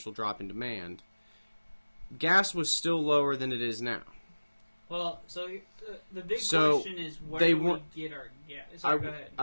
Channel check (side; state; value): both; inverted; correlation -1.00